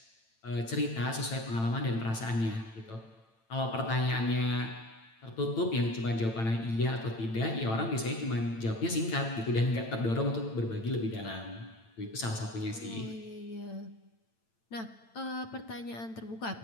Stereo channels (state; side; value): late; right; 8.9 ms